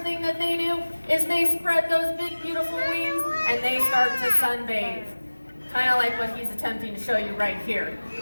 thing that they do is they spread those big, beautiful wings, and they start to sunbathe. Kind of like what he's attempting to show you right here.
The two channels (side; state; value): both; inverted; correlation -1.00